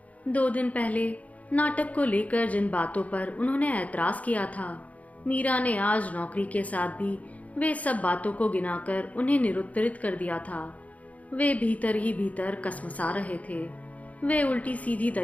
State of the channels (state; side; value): late; right; 0.070 ms